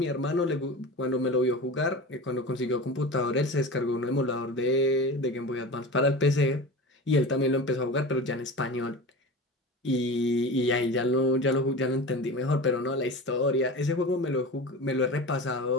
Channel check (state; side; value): normal; both; correlation 0.31